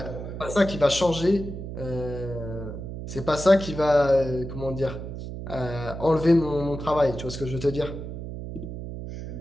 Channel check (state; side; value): noise; right; hum, 8 dB below the sound